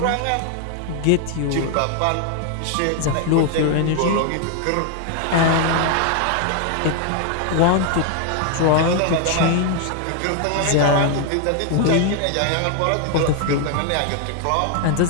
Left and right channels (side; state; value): both; different; correlation 0.00